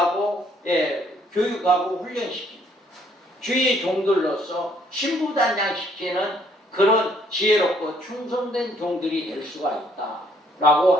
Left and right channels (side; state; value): both; normal; correlation 0.65